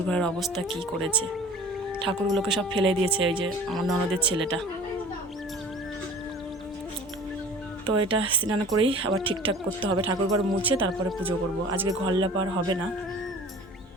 ঘরের অবস্থা কি করেছে, ঠাকুরগুলোকে সব ফেলে দিয়েছে ওই যে আমার ননদের ছেলেটা। তো এটা স্নান করেই আবার ঠিকঠাক করতে হবে, ঠাকুর ঘর মুছে তারপরে পুজো করব, আজকে ঘর লেপার হবে না।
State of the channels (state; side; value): normal; both; correlation 0.43